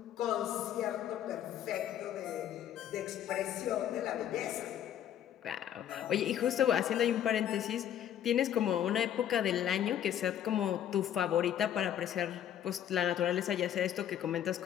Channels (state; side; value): quieter; right; 10.4 dB